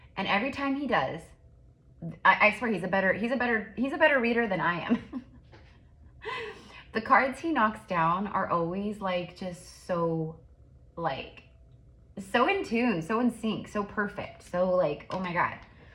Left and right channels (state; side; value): identical; both; correlation 1.00